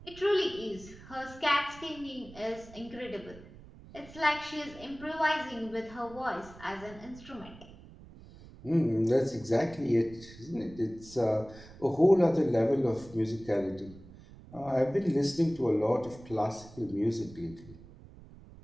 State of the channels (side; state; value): right; noise; rumble, 19 dB below the sound